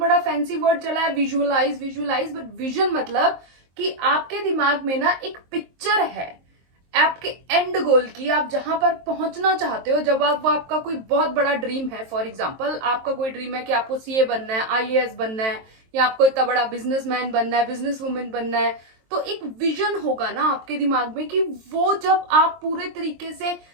फैंसी वर्ड चला है, विजुअलाइज विजुअलाइज, बट विजन मतलब कि आपके दिमाग में ना एक पिक्चर है आपके एंड गोल की, आप जहां पर पहुंचना चाहते हो। जब आप वो आपका कोई बहुत बड़ा ड्रीम है, फॉर एग्जांपल आपका कोई ड्रीम है कि आपको सीए बनना है, आईएएस बनना है, या आपको इतना बड़ा बिजनेसमैन बनना है, बिजनेस वुमेन बनना है, तो एक विजन होगा ना आपके दिमाग में कि वो जब आप पूरे तरीके से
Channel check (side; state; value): left; late; 23 ms